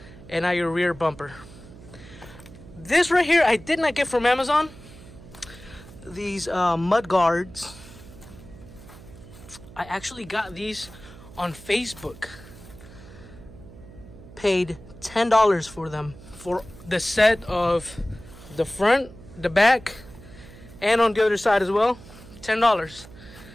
and now your rear bumper. This right here, I did not get from Amazon. These mud guards. I actually got these on Facebook. Paid $10 for them, for the set of the front, the back, and on the other side as well. $10.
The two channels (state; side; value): noise; right; hum, 18 dB below the sound